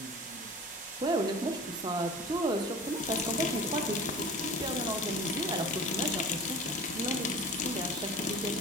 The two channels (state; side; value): normal; both; correlation 0.39